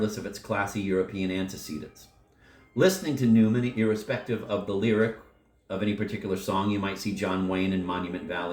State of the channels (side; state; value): both; identical; correlation 1.00